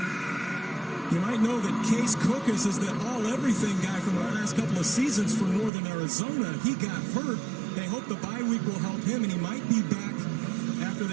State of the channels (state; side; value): drops out; left; at 5.7 s